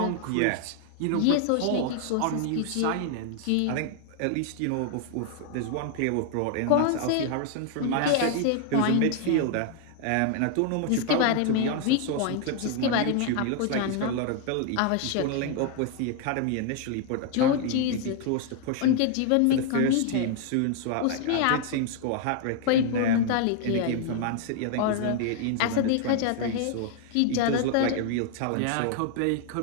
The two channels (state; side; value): different; both; correlation 0.00